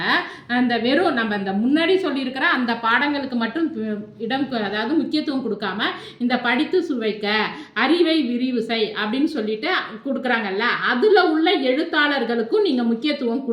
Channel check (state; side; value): identical; both; correlation 1.00